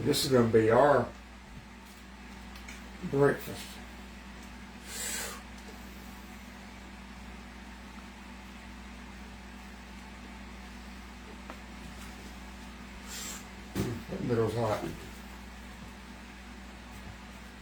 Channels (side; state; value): both; identical; correlation 1.00